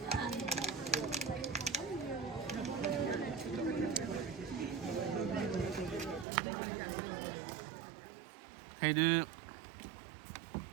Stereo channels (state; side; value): drops out; left; at 6.2 s